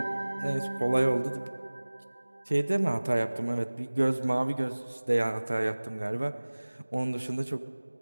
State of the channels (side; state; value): both; inverted; correlation -1.00